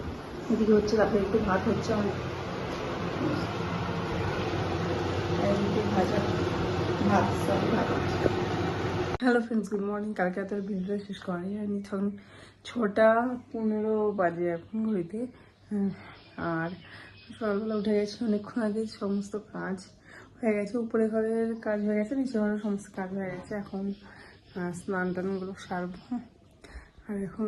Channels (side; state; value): both; identical; correlation 1.00